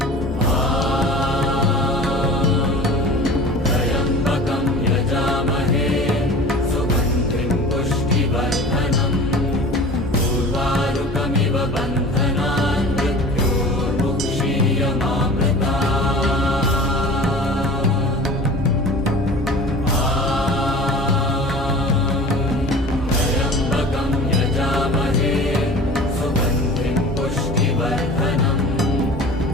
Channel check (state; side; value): normal; both; correlation 0.41